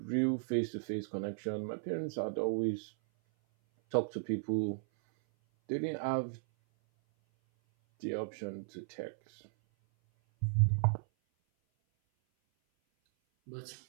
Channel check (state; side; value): silent; left; 54 dB below the other